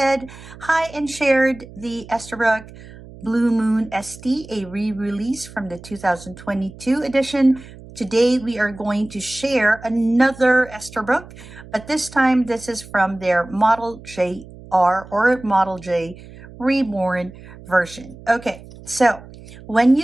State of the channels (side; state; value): right; noise; hum, 18 dB below the sound